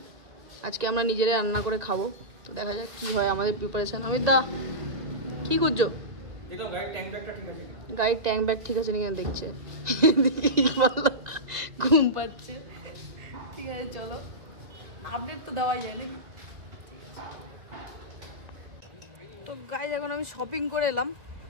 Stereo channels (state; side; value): late; left; 1.9 ms